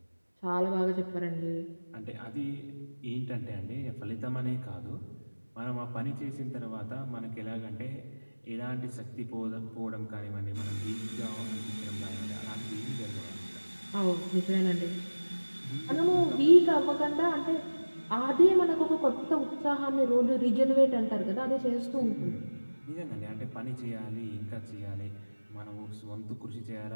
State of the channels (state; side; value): inverted; both; correlation -1.00